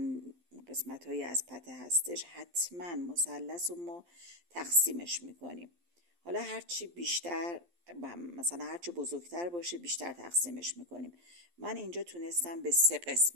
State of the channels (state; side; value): late; left; 12 ms